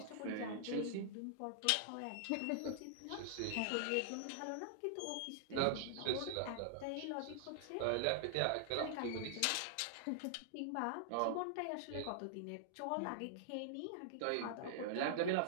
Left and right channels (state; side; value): different; both; correlation -0.01